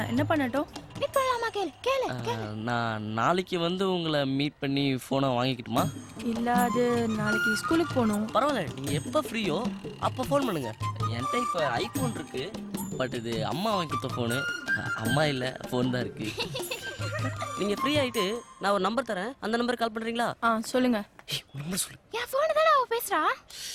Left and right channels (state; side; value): identical; both; correlation 1.00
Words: என்ன பண்ணட்டும்? மீட் பண்ணலாமா? கேளு. நான் நாளைக்கு வந்து உங்களை மீட் பண்ணி போனை வாங்கிக்கிட்டுமா? இல்ல, அது நாளைக்கு ஸ்கூலுக்கு போகணும். பரவாயில்ல, நீங்க எப்ப ஃப்ரீயோ அப்ப ஃபோன் பண்ணுங்க. என்கிட்ட இப்ப ஐபோன் இருக்கு, பட் இது அம்மா வாங்கி கொடுத்த போனு. அம்மா இல்ல, போன் தான் இருக்கு. நீங்க ஃப்ரீ ஆயிட்டு நான் ஒரு நம்பர் தரேன், அந்த நம்பருக்கு கால் பண்றீங்களா? சொல்லுங்க. நம்பர் சொல்லு. என் போன் தான அவ பேசுறா.